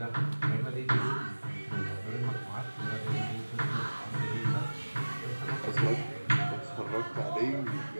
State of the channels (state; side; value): inverted; both; correlation -1.00